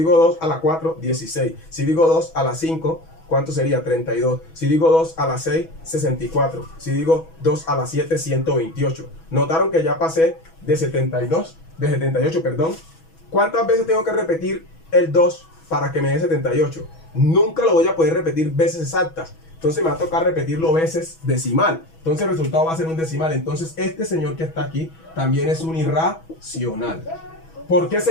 2 a la 4, 16. Si digo 2 a la 5, ¿cuánto sería? 32. Si digo 2 a la 6, 64. Si digo 2 a la 7, 128. ¿Notaron que ya pasé de 78, perdón? ¿Cuántas veces tengo que repetir el 2 para que me dé 78? Nunca lo voy a poder repetir veces exactas. Entonces me va a tocar repetirlo veces decimal. Entonces el resultado va a ser un decimal. Entonces este señor que está aquí también es un irracional. ¿Por qué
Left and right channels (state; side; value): late; right; 6.2 ms